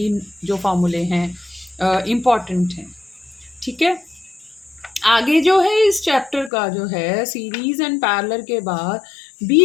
जो फार्मूले हैं important हैं, ठीक है। आगे जो है इस चैप्टर का जो है सीरीज एंड पैरेलल के बाद भी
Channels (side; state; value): right; drops out; at 6.5 s